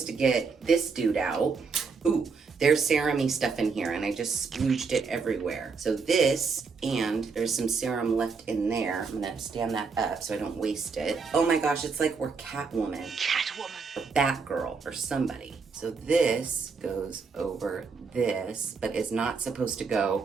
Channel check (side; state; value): left; quieter; 5.0 dB